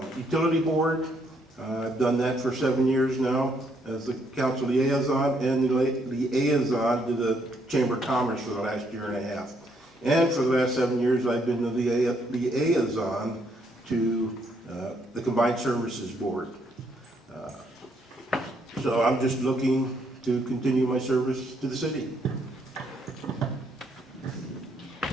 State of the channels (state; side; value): normal; both; correlation 0.72